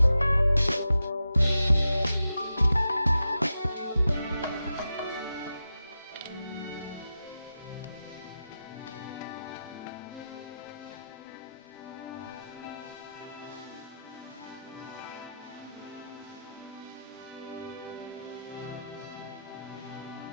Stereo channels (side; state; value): both; inverted; correlation -0.89